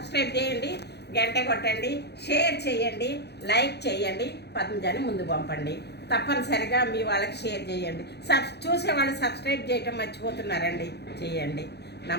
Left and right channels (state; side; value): late; right; 0.48 ms